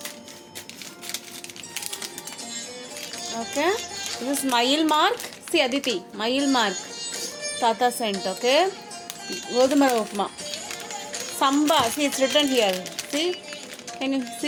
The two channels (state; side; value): identical; both; correlation 1.00